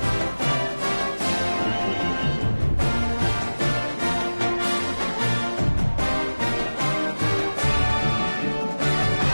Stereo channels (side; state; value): both; inverted; correlation -1.00